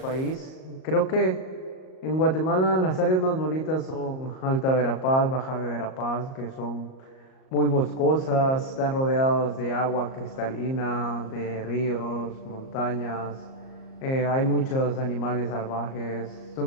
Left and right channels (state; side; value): late; right; 38 ms